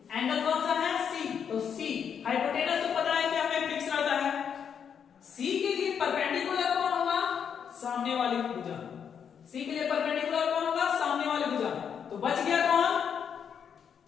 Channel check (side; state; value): right; quieter; 7.6 dB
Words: सामने वाली भुजा। सी के लिए परपेंडिकुलर कौन होगा? सामने वाली भुजा। तो बच गया कौन?